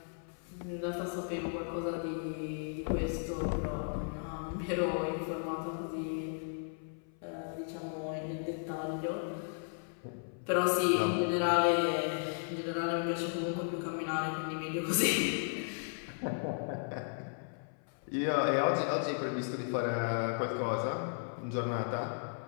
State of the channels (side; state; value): right; silent; 54 dB below the other